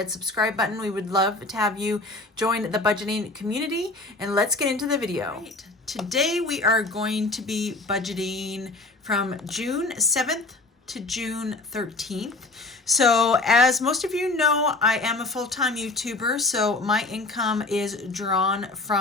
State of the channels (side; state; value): right; quieter; 3.1 dB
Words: subscribe button. We would love to have you join the budgeting community, and let's get into the video. Right. Today we are going to be budgeting from June 7th to June 13th. So as most of you know, I am a full-time YouTuber, so my income is drawn